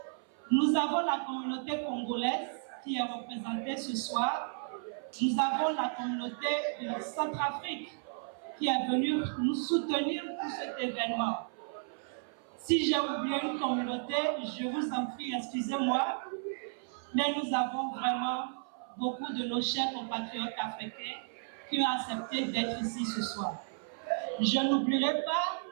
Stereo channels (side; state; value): left; silent; 55 dB below the other